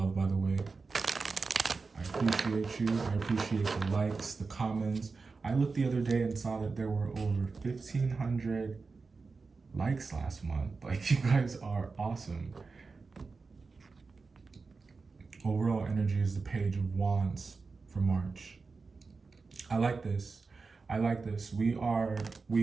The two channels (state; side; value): quieter; left; 4.4 dB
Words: by the way. I appreciate you. I appreciate the likes, the comments. I looked the other day and saw that there were over 1,500 likes last month. Like, you guys are awesome. Overall energy is the Page of Wands for March. I like this. I like this. We